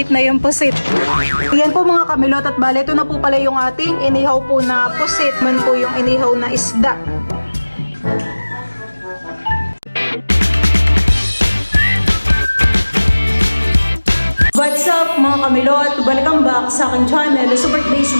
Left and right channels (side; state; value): both; inverted; correlation -1.00